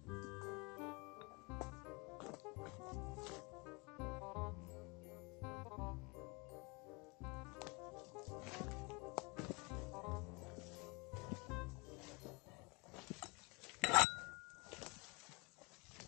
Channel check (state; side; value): quieter; right; 28.6 dB